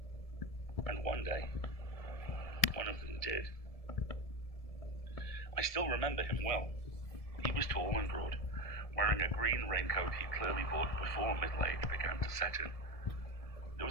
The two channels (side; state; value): right; late; 1.7 ms